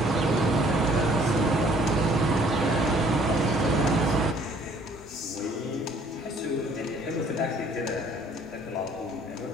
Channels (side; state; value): both; normal; correlation 0.59